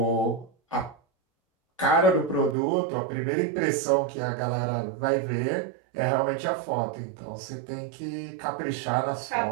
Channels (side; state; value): left; drops out; at 2.6 s